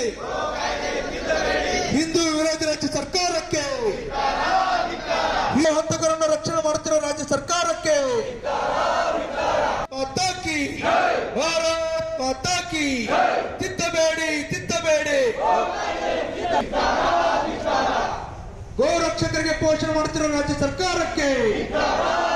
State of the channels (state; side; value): identical; both; correlation 1.00